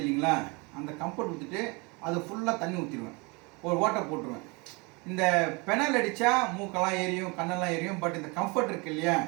இல்லைங்களா, அந்த கம்ஃபர்ட் ஊற்றிட்டு அது ஃபுல்லாக தண்ணி ஊற்றிடுவேன், ஒரு ஓட்டை போட்டுருவேன். இந்த பெனால் அடித்தா மூக்கெல்லாம் ஏரியும் கண்ணெல்லாம் ஏரியும். பட் இந்த கம்ஃபர்ட் இருக்கு இல்லையா,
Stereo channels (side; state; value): left; quieter; 28.6 dB